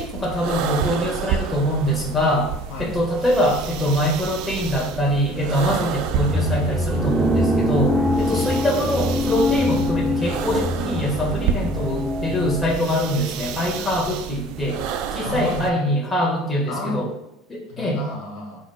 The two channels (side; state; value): both; normal; correlation 0.51